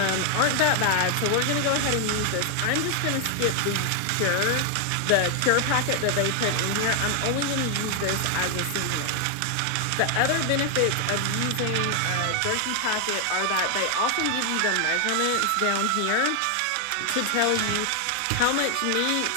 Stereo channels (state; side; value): different; both; correlation 0.00